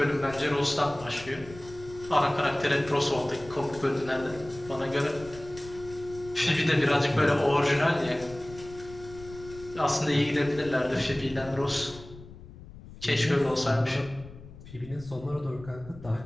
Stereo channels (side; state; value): left; noise; rumble, 17 dB below the sound